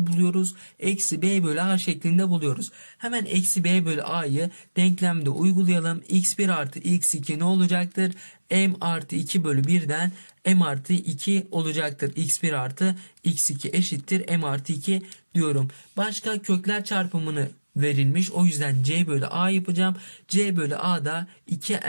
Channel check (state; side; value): inverted; both; correlation -1.00